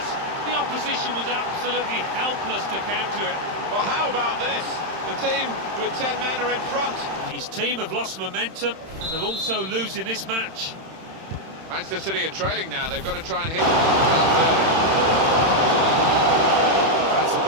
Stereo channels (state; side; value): late; left; 31 ms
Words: The opposition was absolutely helpless to counter it. Well, how about this? The team with 10 men are in front. His team have lost momentum, and they're also losing this match. Manchester City are trailing now. They've got to try and hit Valverde. That's a